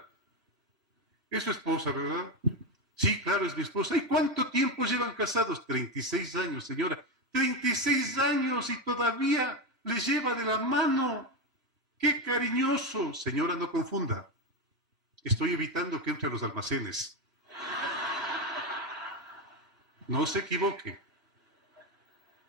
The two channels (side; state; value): left; late; 2.9 ms